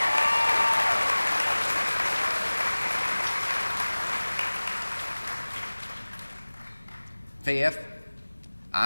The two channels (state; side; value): inverted; both; correlation -1.00